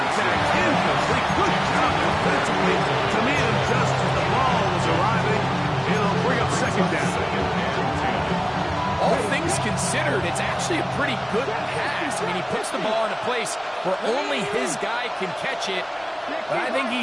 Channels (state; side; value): identical; both; correlation 1.00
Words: Incomplete. Good job defensively to meet him just as the ball was arriving. It'll bring up 2nd down. All things considered, it's actually a pretty good pass. I mean, he puts the ball in a place where only his guy can catch it. But I think he